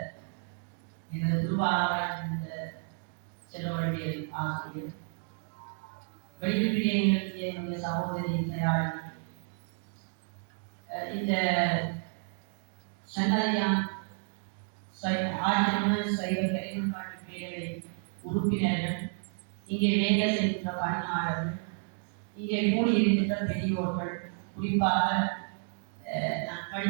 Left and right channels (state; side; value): silent; left; 57 dB below the other